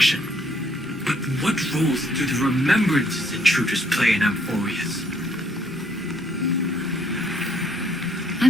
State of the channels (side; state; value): both; normal; correlation 0.68